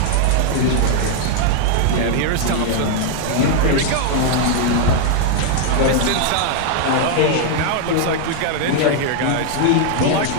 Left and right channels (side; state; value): both; different; correlation 0.00